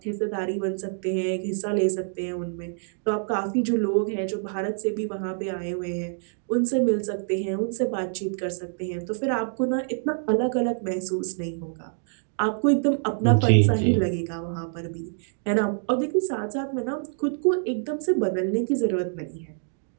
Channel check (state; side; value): silent; left; digital silence